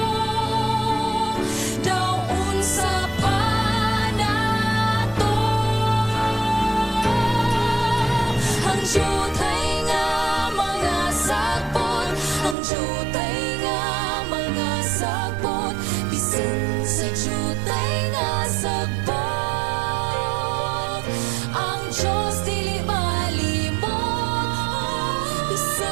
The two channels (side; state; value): left; drops out; at 12.6 s